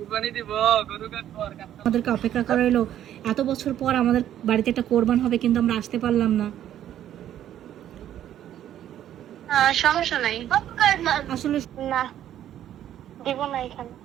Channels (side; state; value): left; quieter; 11.3 dB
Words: দিব, গরু কাটবো। আমাদেরকে অপেক্ষা করা হলো এত বছর পর আমাদের বাড়িতে একটা কোরবান হবে, কিন্তু আমরা আসতে পারলাম না। সমস্যা নাই, আসলে না দিব না এখানে।